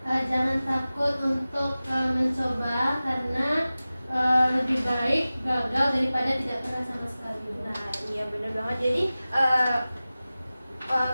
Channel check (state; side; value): inverted; both; correlation -0.97